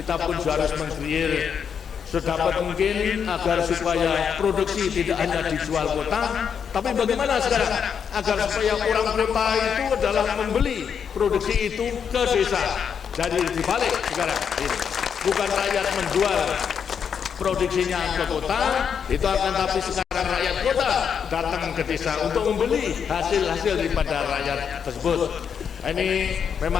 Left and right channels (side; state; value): right; quieter; 7.3 dB